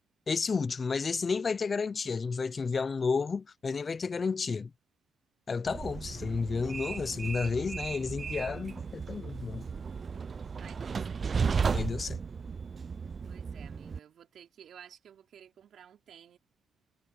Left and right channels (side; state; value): both; normal; correlation 0.87